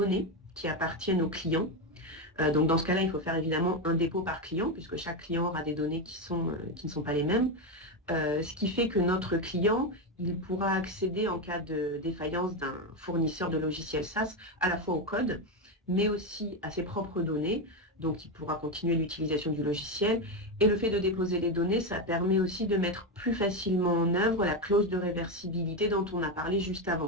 qui appartiennent aux clients. Donc dans ce cas-là, il faut faire évidemment un dépôt par client, puisque chaque client aura des données qui ne sont pas les mêmes. Ce qui fait que notre client, il pourra accéder en cas de défaillance d'un fournisseur de logiciels SaaS à la fois au code, mais aussi à ses propres données. Donc il pourra continuer l'utilisation du logiciel. Et le fait de déposer les données, ça permet aussi de mettre plus facilement en œuvre la clause de réversibilité dont on a parlé juste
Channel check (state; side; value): normal; both; correlation 0.10